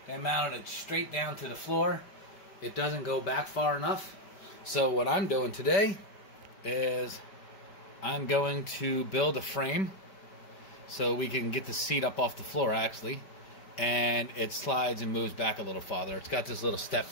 They mounted it straight down to the floor. It doesn't go back far enough. So what I'm doing today is I'm going to build a frame so we can get the seat up off the floor actually, and it slides and moves back a little farther. It's got this little step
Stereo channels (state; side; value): late; right; 5.1 ms